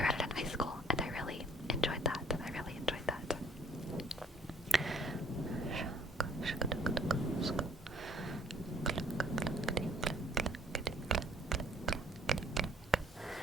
read it in high school, and I really enjoyed that.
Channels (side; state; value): both; normal; correlation 0.58